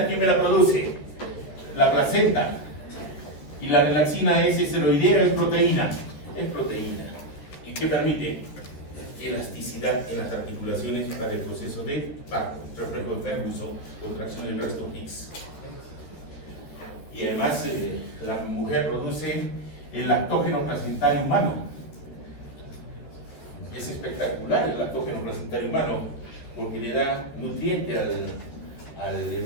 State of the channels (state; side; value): late; right; 13 ms